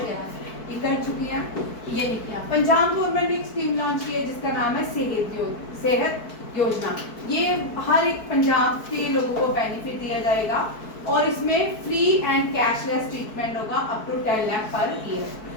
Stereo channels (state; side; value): late; right; 4.6 ms